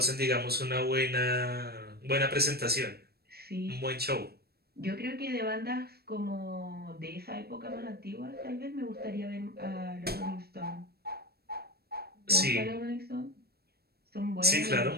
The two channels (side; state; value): left; late; 0.46 ms